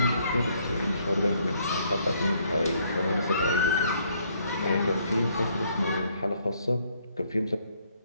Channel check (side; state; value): both; inverted; correlation -0.68